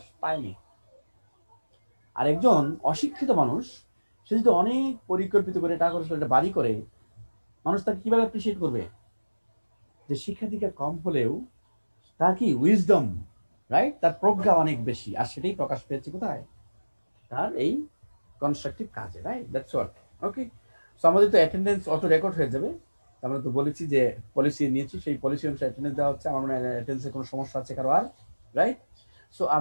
পায়নি। আর একজন অশিক্ষিত মানুষ সে যদি অনেক পরিকল্পিত করে টাকা খরচ করে একটা বাড়ি করে, মানুষ তাকে কিভাবে অ্যাপ্রিসিয়েট করবে? যে শিক্ষা দীক্ষা কম হলেও তার কি উইজডম, রাইট, তার প্রজ্ঞা অনেক বেশি, আর সেটাই প্রকাশ পেয়েছে কোথায়? তার এই কনস্ট্রাকটিভ কাজে, right? That's what. Okay, so আমাদের তো অ্যাটেন্ডেন্স অটো রেকর্ড হয়ে যাবে। আমরা তো বলেছি যে পলিসি নিয়েছি, সেই পলিসি অনুসারে অ্যাটেন্ডেন্স দেওয়া হচ্ছে। আমার মনে হয় অ্যাটেন্ডেন্সে কোনো সমস্যা আছে কারো আর, রাইট? সো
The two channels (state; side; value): inverted; both; correlation -1.00